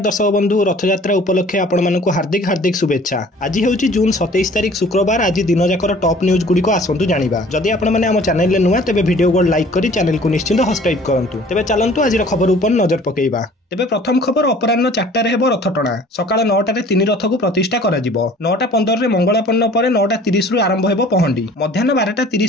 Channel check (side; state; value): both; normal; correlation 0.50